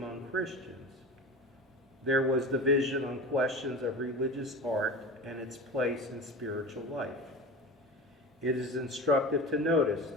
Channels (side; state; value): both; normal; correlation 0.31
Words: Christians, there was division on questions of religious art and its place in spiritual life. It is instructive to notice